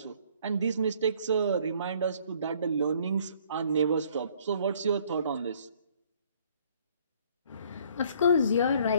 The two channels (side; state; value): both; inverted; correlation -0.60